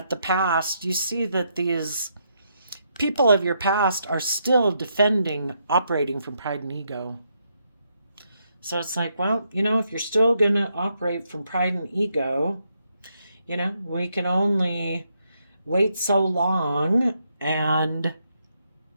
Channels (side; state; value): both; inverted; correlation -0.78